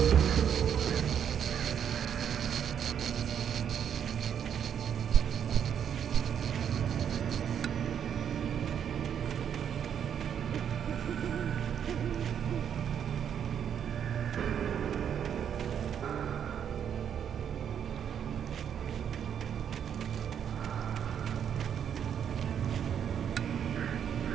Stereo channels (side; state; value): left; quieter; 8.6 dB